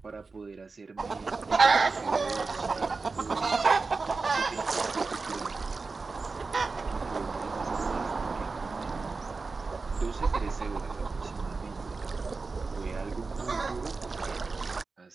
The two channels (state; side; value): quieter; left; 4.1 dB